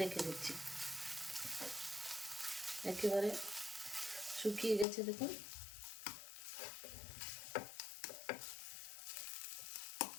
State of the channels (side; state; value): right; drops out; at 4.9 s